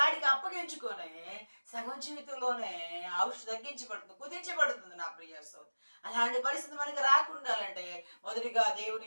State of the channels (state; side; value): inverted; both; correlation -1.00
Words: అప్పగించుకొని సగం జీవితంలోనే ఔషధం తగ్గించబడుతుంది, కుదించబడుతుంది. నా ప్రియ సోదరి, అలాంటి పరిస్థితి మనకి రాకుండాలంటే మొదటిగా